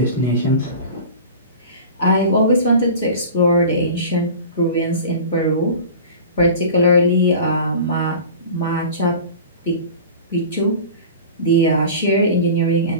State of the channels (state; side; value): inverted; both; correlation -0.37